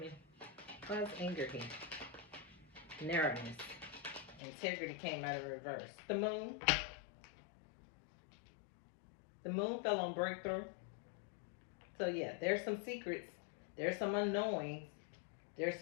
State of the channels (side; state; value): right; drops out; at 4.4 s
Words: Why's anger here? Narrowness. Integrity came out of reverse. The moon. The moon fell on breakthrough. So yeah, there's some secrets. There's some unknowing. There's